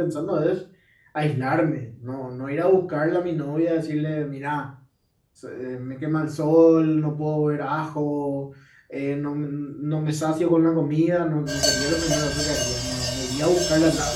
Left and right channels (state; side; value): identical; both; correlation 1.00